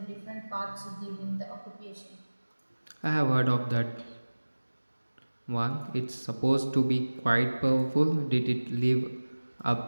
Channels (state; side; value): inverted; both; correlation -1.00